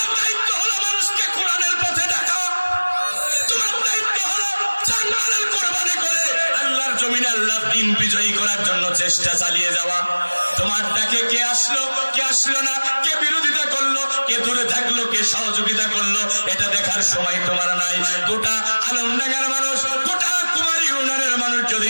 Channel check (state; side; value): inverted; both; correlation -1.00